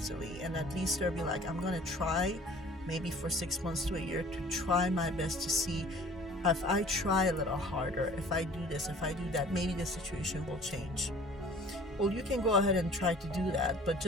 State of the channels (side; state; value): both; normal; correlation 0.50